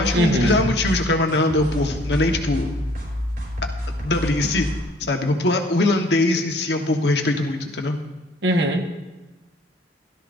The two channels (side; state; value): both; normal; correlation 0.57